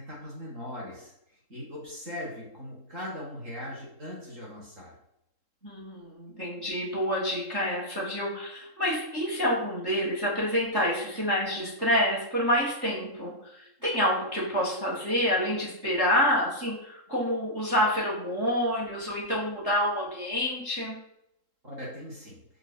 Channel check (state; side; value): late; left; 3.7 ms